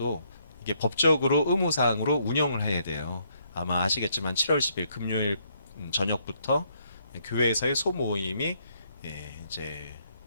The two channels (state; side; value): inverted; both; correlation -0.71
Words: 이게 법적으로 의무사항으로 운영을 해야 돼요. 아마 아시겠지만 7월 10일 금요일 저녁부터 교회에서의 소모임이 이제